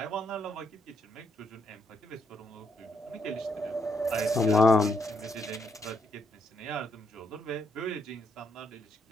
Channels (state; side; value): normal; both; correlation 0.75